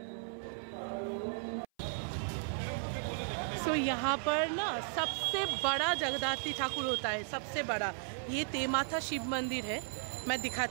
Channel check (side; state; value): left; silent; 54 dB below the other